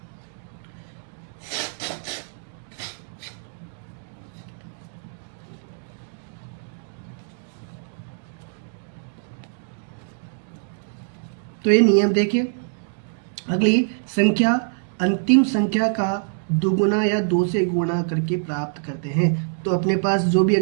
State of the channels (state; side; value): silent; left; digital silence